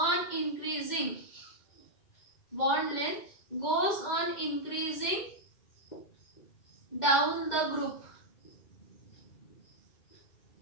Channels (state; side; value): late; right; 2.1 ms